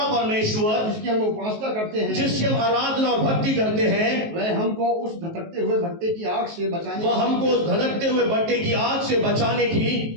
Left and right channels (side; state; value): left; late; 19 ms